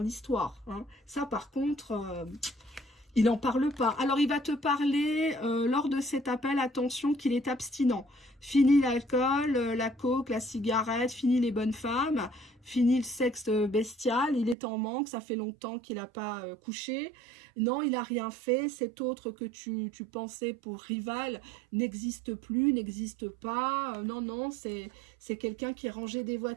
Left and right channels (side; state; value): left; drops out; at 14.6 s